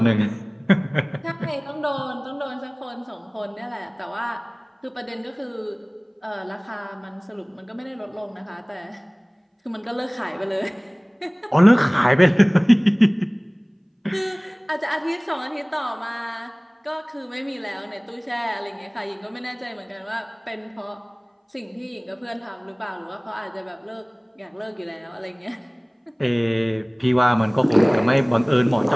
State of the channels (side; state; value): both; identical; correlation 1.00